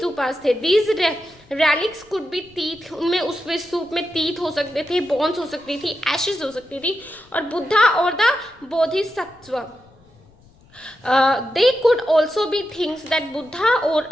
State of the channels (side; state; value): left; noise; rumble, 28 dB below the sound